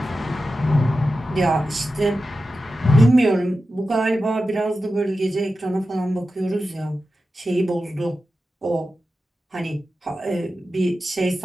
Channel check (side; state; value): both; normal; correlation 0.92